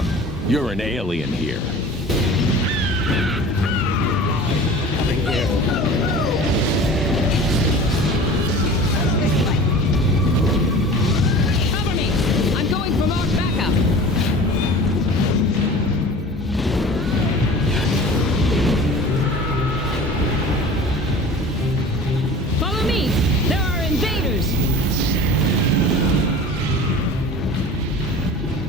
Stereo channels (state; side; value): normal; both; correlation 0.40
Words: You're an alien here. Cover me. I'm going for more backup. Follow me. There are invaders.